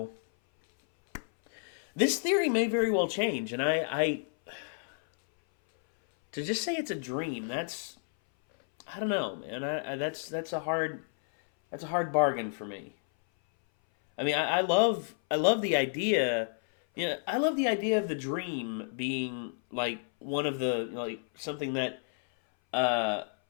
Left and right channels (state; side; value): silent; right; 57 dB below the other